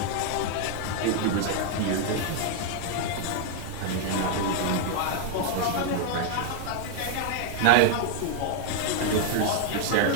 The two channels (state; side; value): different; both; correlation 0.00